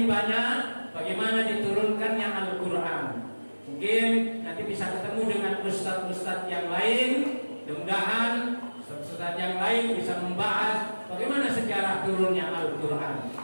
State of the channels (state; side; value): inverted; both; correlation -1.00